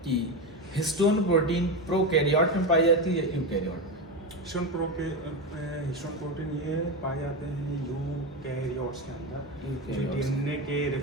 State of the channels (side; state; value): both; normal; correlation 0.15